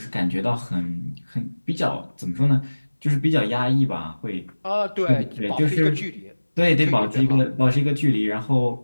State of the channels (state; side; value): inverted; both; correlation -1.00